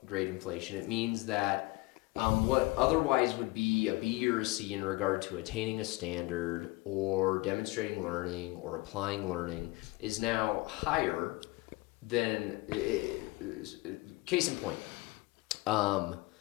grade inflation, it means that what otherwise would be a B or a C in regard to attaining a standard or demonstrating learning or applying learning is now higher than, case in point,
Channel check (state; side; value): quieter; right; 22.6 dB